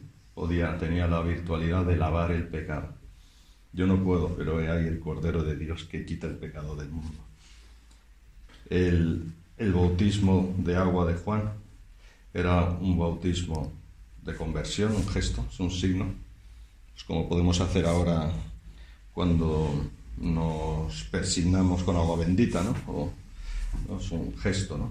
tenía la virtualidad de lavar el pecado. Yo no puedo, pero hay el Cordero de Dios que quita el pecado del mundo. El bautismo de agua de Juan era un bautismo de conversión, un gesto, es un signo. Es como podemos hacer ahora cuando nos persignamos con agua bendita, ¿no? Es un gesto,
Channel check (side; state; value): both; identical; correlation 1.00